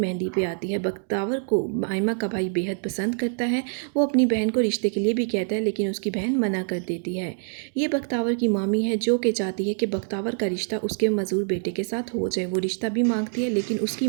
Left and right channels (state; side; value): silent; left; digital silence